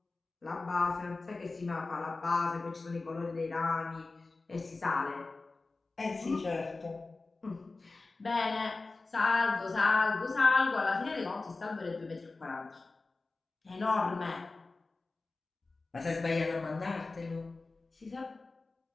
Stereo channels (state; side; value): quieter; right; 3.6 dB